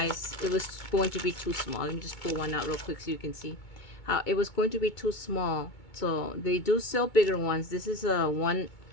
It was going to be too small. Let me just pull one out real quick so you can see how it was going to be too small. So they do sell bigger ones. This is a 1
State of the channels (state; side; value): late; right; 2.2 ms